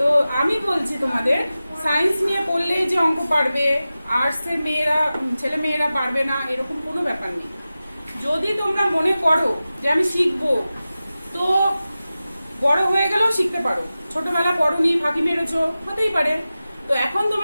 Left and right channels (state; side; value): inverted; both; correlation -0.95